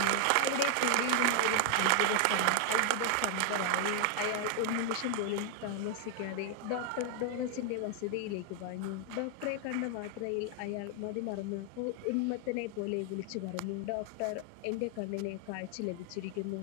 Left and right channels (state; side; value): different; both; correlation 0.00